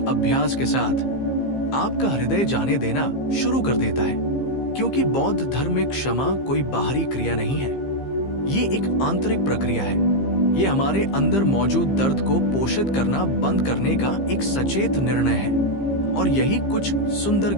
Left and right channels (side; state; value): right; late; 15 ms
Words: अभ्यास के साथ आपका हृदय जाने देना शुरू कर देता है, क्योंकि बौद्ध धर्म में क्षमा कोई बाहरी क्रिया नहीं है, ये एक आंतरिक प्रक्रिया है। ये हमारे अंदर मौजूद दर्द को पोषित करना बंद करने का एक सचेत निर्णय है। और यही कुछ सुंदर